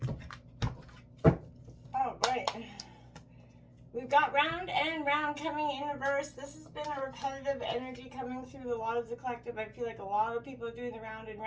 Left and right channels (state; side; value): identical; both; correlation 1.00